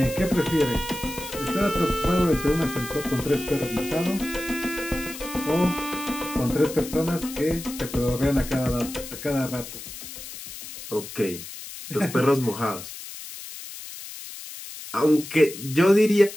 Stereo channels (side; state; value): left; noise; hiss, 12 dB below the sound